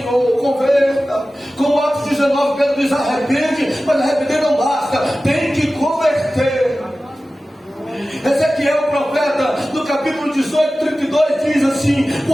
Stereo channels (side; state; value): both; normal; correlation 0.95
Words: converta. Como Atos 19, Pedro diz: arrepende, mas arrepender não basta, tem que converter. Ezequiel, o profeta, no capítulo 18, 32, diz assim: